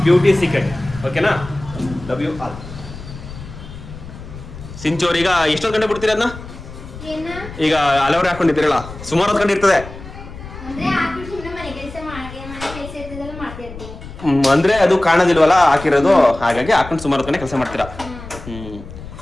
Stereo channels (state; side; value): noise; left; rumble, 14 dB below the sound